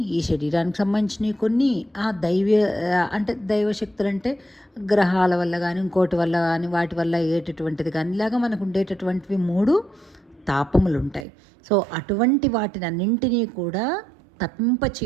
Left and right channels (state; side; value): drops out; left; at 11.2 s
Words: ఈ శరీరానికి సంబంధించినవి కొన్ని. అంటే దైవశక్తులు అంటే గ్రహాల వల్ల కానీ ఇంకోటి వల్ల కానీ వాటి వల్ల అయ్యేటటువంటిది కానీ ఇలాగా మనకు ఉండేటటువంటివి 3 తాపములు ఉంటాయి. సో అటువంటి వాటిని అన్నింటినీ కూడా తప్పింప